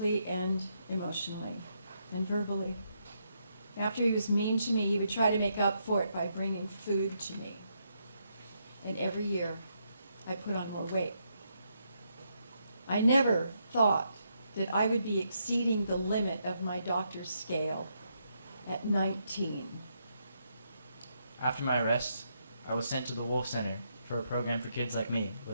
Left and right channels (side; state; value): both; inverted; correlation -0.78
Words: and emotionally and verbally. After he was mean to me, he would try to make up for it by bringing food to me. And every year, I put on more weight. I never thought that I would be exceeding the limit of my doctor's scale at 19. After my arrest, I was sent to the Wolf Center for a program for kids like me